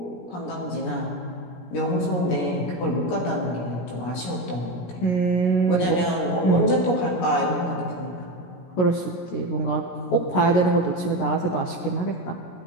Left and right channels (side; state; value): right; late; 17 ms